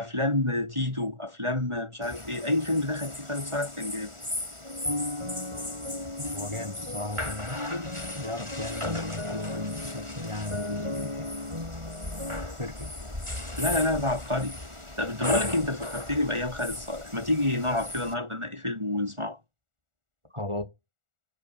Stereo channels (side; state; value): left; late; 1.4 ms